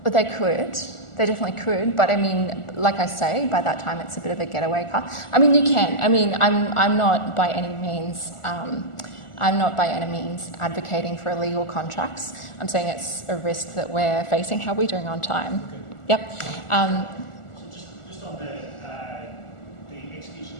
But they could. They definitely could. But I mean, like I say, by that time it's a bit of a getaway car. I mean, you can. I mean, I'm not by any means advocating for illegal contracts. I'm saying it's a risk that we're facing. How are we doing on time? Yep. Just on the execution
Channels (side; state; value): right; late; 1.4 ms